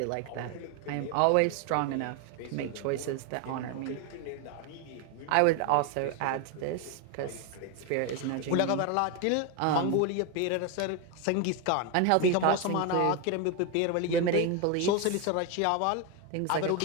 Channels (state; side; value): different; both; correlation 0.01